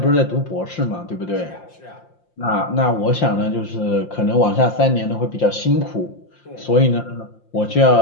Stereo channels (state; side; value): late; right; 5.7 ms